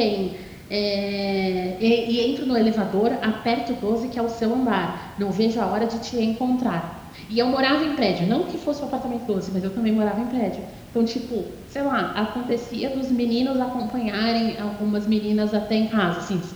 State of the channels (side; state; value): both; identical; correlation 1.00